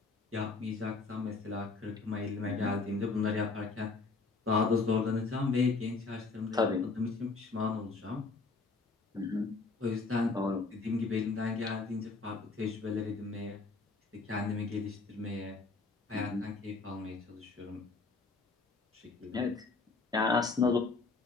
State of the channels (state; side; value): quieter; right; 4.0 dB